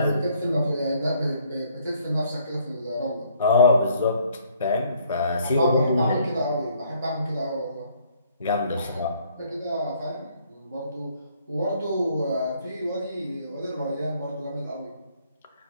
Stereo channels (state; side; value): inverted; both; correlation -0.64